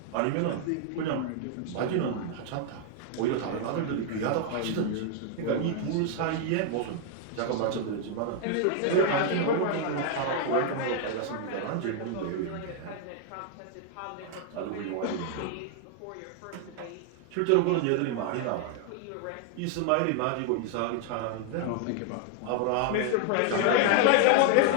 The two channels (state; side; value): different; both; correlation 0.00